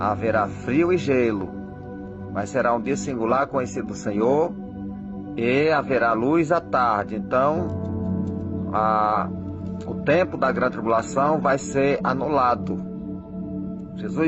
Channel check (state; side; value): identical; both; correlation 1.00